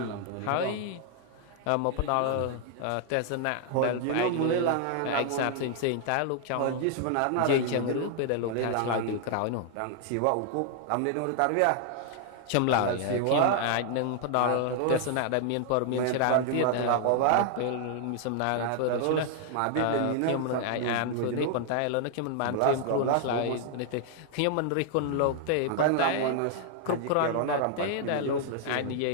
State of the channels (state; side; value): different; both; correlation 0.00